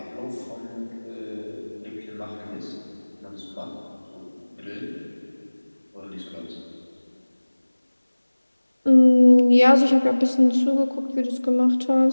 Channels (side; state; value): both; inverted; correlation -1.00